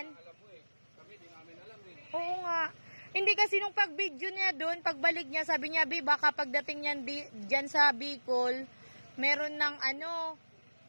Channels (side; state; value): both; inverted; correlation -1.00